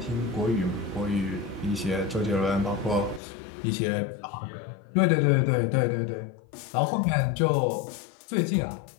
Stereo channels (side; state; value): right; drops out; at 3.2 s